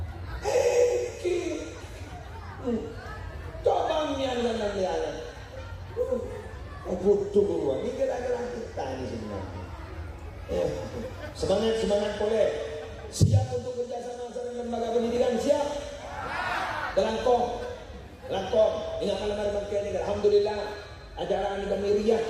cobanya dan butuh keluar, ini kira-kira kita ini sebenarnya. Semangat boleh. Siap untuk kerjasama dengan lembaga pendidikan, siap. Langkong. Ingat malam hari ini, alhamdulillah ajaran kami riak,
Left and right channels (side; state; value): both; identical; correlation 1.00